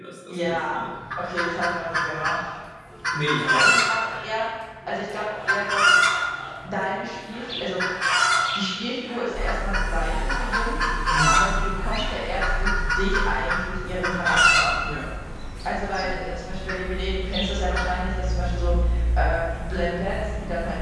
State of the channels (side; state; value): both; identical; correlation 1.00